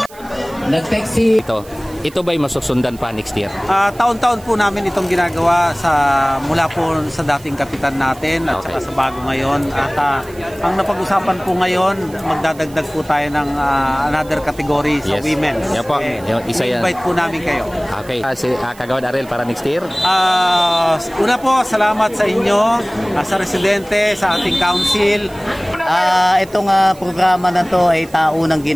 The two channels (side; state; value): right; noise; hiss, 23 dB below the sound